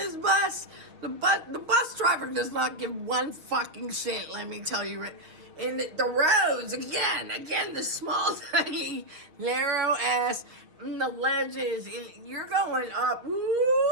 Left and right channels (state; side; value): late; left; 6.4 ms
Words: bus. The bus driver does not give one fucking shit, let me tell you. And the roads, again, the small, tiny, narrow ass, and the ledges, and you're going up. Woo,